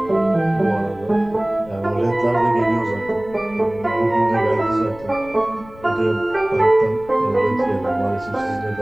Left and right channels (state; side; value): noise; left; rumble, 21 dB below the sound